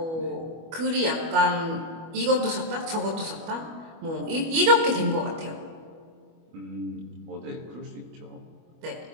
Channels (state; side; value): late; left; 25 ms